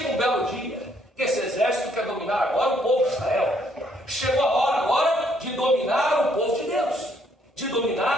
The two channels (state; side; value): normal; both; correlation 0.68